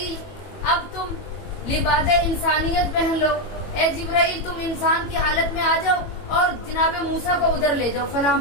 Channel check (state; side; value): late; right; 21 ms